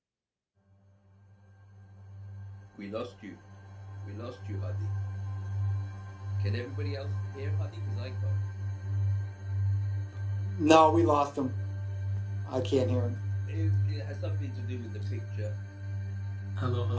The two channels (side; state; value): both; identical; correlation 1.00